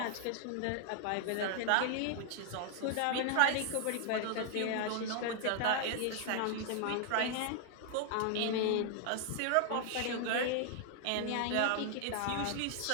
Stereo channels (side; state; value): both; different; correlation 0.00